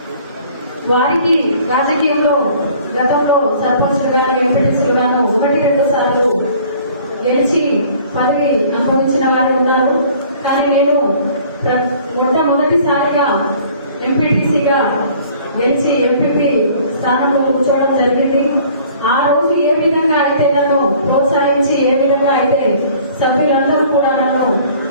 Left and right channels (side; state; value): both; inverted; correlation -0.53